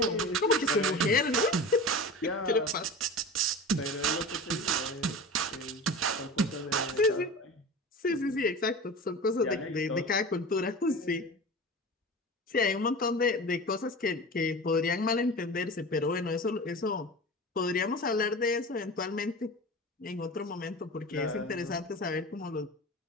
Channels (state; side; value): normal; both; correlation 0.32